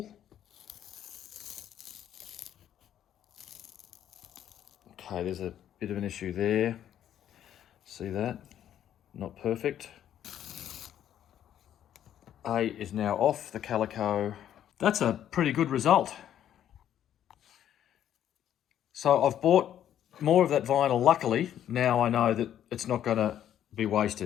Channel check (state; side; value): quieter; right; 10.6 dB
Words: Okay, there's a bit of an issue there. See that? Not perfect. A is now off the calico. That's a pretty good result. So I've bought more of that vinyl. Luckily, now I know that it's not going to be